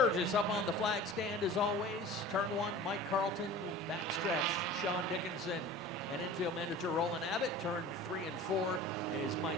up on the flag stand as always. Turn 1, Mike Carlton. Backstretch, Sean Dickinson. And infield manager Roland Abbott. Turn 3 and 4 is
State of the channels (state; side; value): normal; both; correlation 0.39